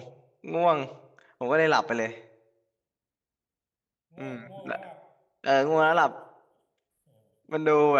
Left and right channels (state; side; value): identical; both; correlation 1.00